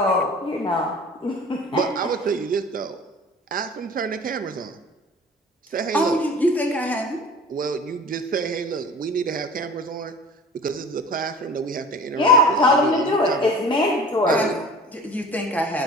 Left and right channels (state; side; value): normal; both; correlation 0.43